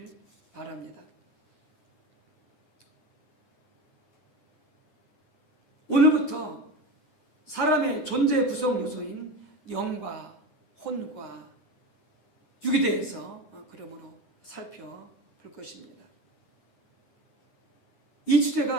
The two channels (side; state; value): right; late; 9.8 ms